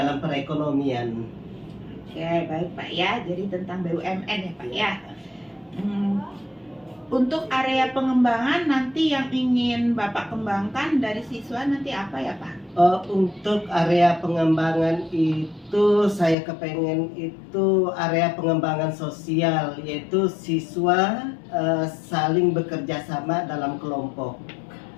perekonomian. Oke, baik Pak ya. Jadi tentang BUMN ya Pak ya. Untuk area pengembangan nanti yang ingin Bapak kembangkan dari siswa nanti apa ya Pak? Untuk area pengembangan itu saya kepengen itu area pengembangan sosial, yaitu siswa saling bekerja sama dalam kelompok.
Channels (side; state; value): right; drops out; at 16.4 s